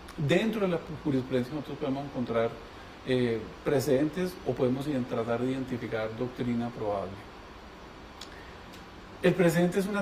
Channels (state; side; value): identical; both; correlation 1.00